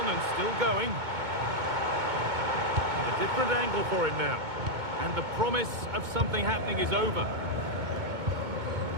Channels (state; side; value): late; left; 2.2 ms